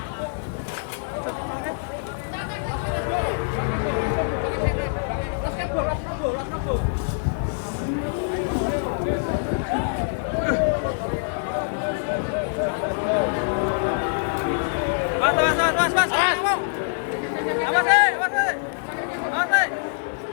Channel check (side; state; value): right; silent; 62 dB below the other